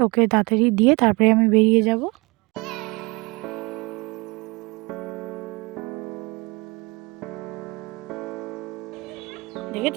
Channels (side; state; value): left; quieter; 25.2 dB